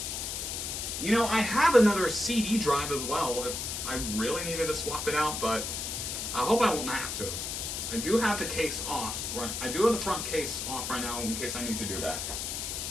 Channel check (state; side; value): noise; left; hiss, 4 dB below the sound